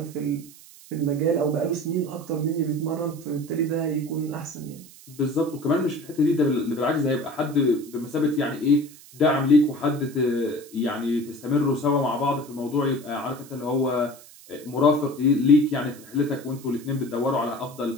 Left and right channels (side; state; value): right; noise; hiss, 21 dB below the sound